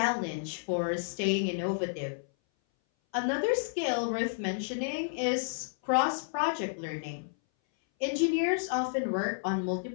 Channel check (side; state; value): right; silent; 57 dB below the other